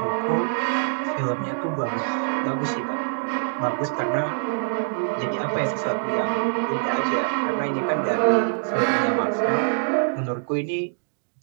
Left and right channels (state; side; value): silent; left; digital silence